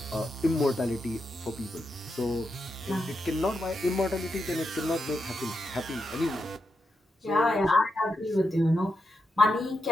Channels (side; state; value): both; normal; correlation 0.85